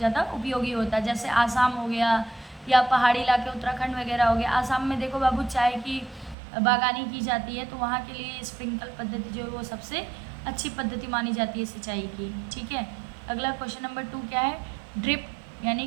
उपयोगी होता है। जैसे आसाम हो गया या पहाड़ी इलाके उत्तराखंड वगैरह हो गया। आसाम में देखो बाबू चाय की बागानी की जाती है, तो वहाँ के लिए स्प्रिंकल पद्धति जो है वो सबसे अच्छी पद्धति मानी जाती है सिंचाई की। ठीक है, अगला क्वेश्चन नंबर 2 क्या है, ड्रिप यानी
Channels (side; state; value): left; drops out; at 6.4 s